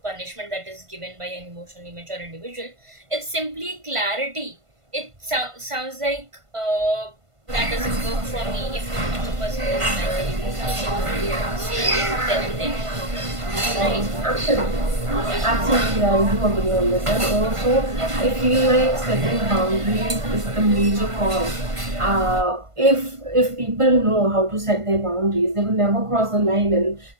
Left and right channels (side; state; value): left; late; 1.5 ms